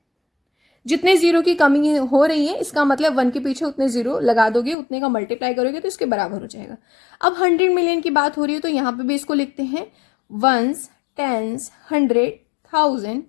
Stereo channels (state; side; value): drops out; right; at 4.8 s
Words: जितने जीरो की कमी हो रही है, इसका मतलब 1 के पीछे उतने जीरो लगा दोगे, उतने का मल्टीप्लाई करोगे तो इसके बराबर हो जाएगा। अब 100 मिलियन की बात हो रही है तो यहाँ पे भी इसको लिखते हैं वंस, टेंस, 100, 1000,